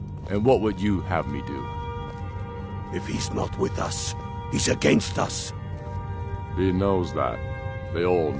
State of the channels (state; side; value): identical; both; correlation 1.00